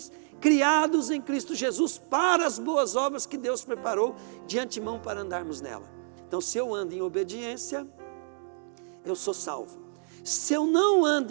criados em Cristo Jesus para as boas obras que Deus preparou de antemão para andarmos nela. Então, se eu ando em obediência, eu sou salvo. Se eu não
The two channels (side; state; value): left; silent; digital silence